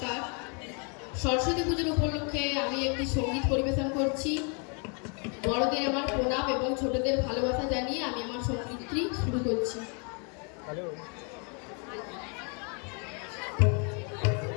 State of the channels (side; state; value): right; quieter; 36.5 dB